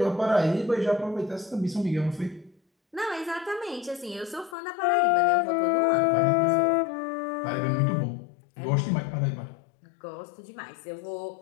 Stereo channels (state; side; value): drops out; right; at 4.5 s